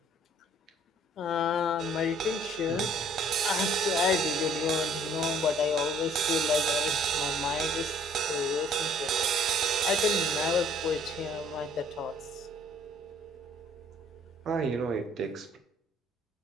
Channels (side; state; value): both; normal; correlation 0.58